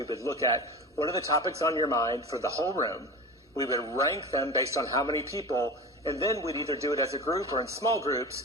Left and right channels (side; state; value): both; normal; correlation 0.30